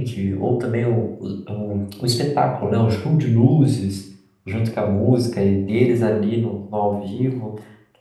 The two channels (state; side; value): identical; both; correlation 1.00